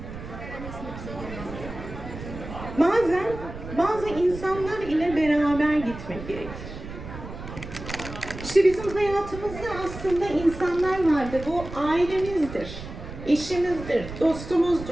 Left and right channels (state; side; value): noise; right; rumble, 11 dB below the sound